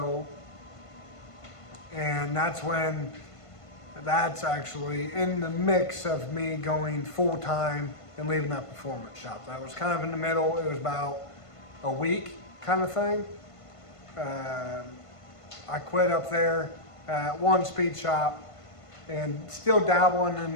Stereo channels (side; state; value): right; late; 1.5 ms